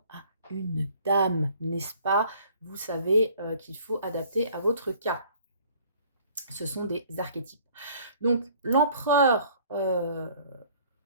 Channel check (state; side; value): inverted; both; correlation -0.55